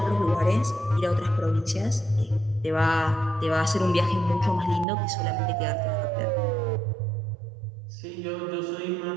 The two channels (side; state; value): left; drops out; at 4.9 s